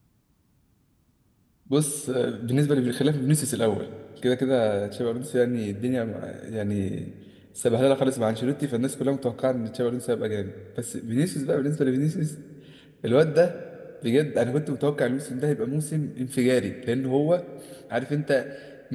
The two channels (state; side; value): identical; both; correlation 1.00